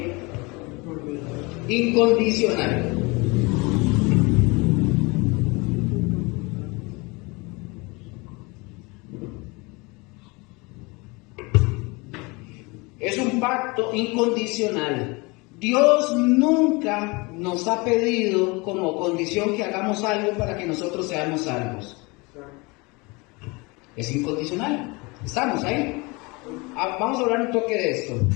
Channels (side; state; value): right; quieter; 26.5 dB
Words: incondicional. Es un pacto incondicional. Dios nunca nos ha pedido como condición que hagamos algo para que nosotros seamos salvos. Es incondicional. Estamos ahí. Vamos a hablar un toque de esto.